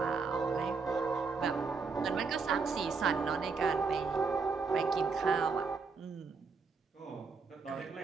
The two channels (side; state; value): left; quieter; 4.8 dB